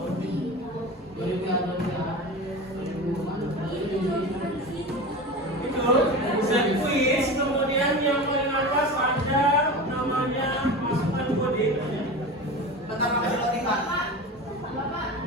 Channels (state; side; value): normal; both; correlation 0.29